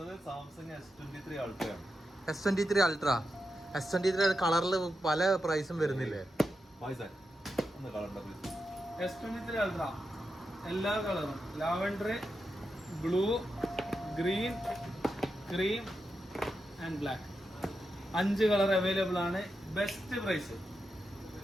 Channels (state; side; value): normal; both; correlation 0.88